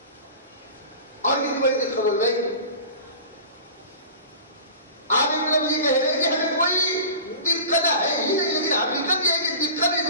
اور کتنی بڑی دقت ہو گئی. آپ ایک طرف یہ کہہ رہے ہیں کہ ہمیں کوئی دقت ہے ہی نہیں لیکن حقیقت یہ ہے کہ دقت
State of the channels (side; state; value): both; inverted; correlation -0.37